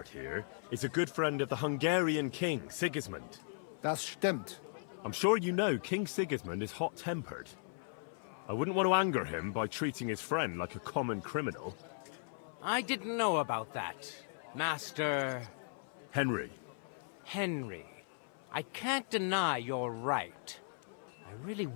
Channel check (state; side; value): silent; right; 53 dB below the other